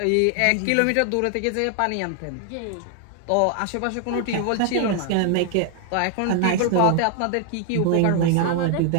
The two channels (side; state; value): both; different; correlation 0.00